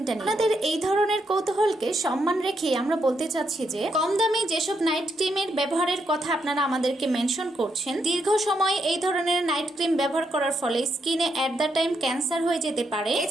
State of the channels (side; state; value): both; normal; correlation 0.79